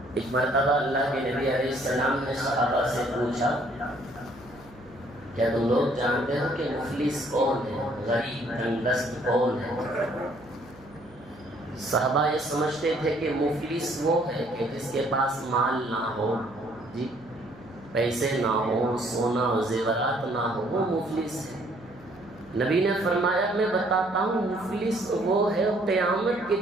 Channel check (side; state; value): right; noise; hum, 23 dB below the sound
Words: ایک مرتبہ اللہ کے نبی علیہ السلام نے صحابہ سے پوچھا کیا تم لوگ جانتے ہو کہ مفلس کون ہے، غریب تنگدست کون ہے؟ صحابہ یہ سمجھتے تھے کہ مفلس وہ ہے کہ جس کے پاس مال نہ ہو، جی پیسے نہ ہو، سونا و زیورات نہ ہو، وہ مفلس ہے۔ نبی نے فرمایا میں بتاتا ہوں مفلس وہ ہے قیامت کے